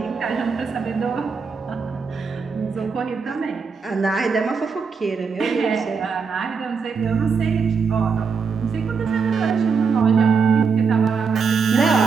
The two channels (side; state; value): left; quieter; 5.4 dB